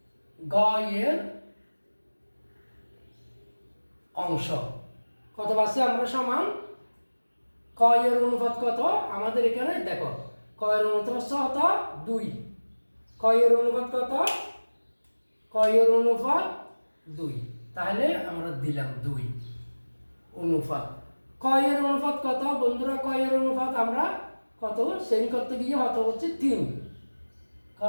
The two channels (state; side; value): inverted; both; correlation -1.00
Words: গ এর অংশ কত পাচ্ছি আমরা? সমান ক এর অনুপাত কত আমাদের এখানে দেখো, ক এর অনুপাত কত 2, ক এর অনুপাত কত, ক এর অনুপাত 2, তাহলে আমরা দিলাম 2 অনুপাত ক এর অনুপাত কত বন্ধুরা? ক এর অনুপাত আমরা কত সেম করতে গিয়ে কত হচ্ছে 3, ক